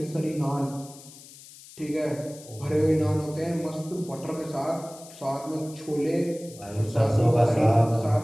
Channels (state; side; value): noise; left; hiss, 19 dB below the sound